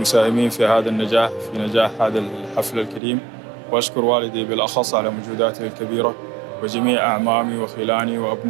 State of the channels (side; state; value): left; drops out; at 3.0 s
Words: في هذا النجاح، في نجاح هذا الحفل الكريم، وأشكر والدي بالأخص على مجهوداته الكبيرة، وجميع أعمامي وخلاني